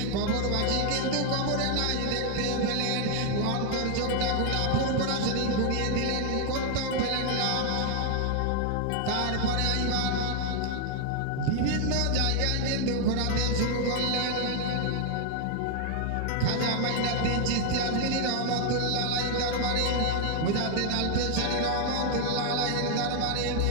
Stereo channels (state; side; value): different; both; correlation 0.00